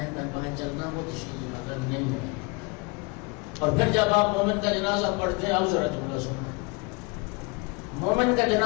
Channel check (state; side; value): quieter; right; 28.9 dB